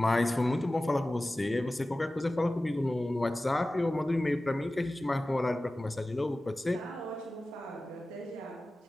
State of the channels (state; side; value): normal; both; correlation 0.96